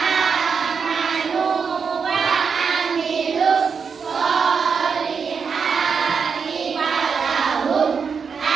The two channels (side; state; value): left; quieter; 5.9 dB